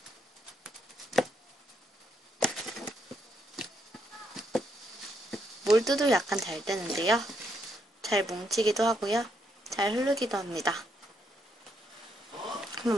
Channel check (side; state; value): both; normal; correlation 0.76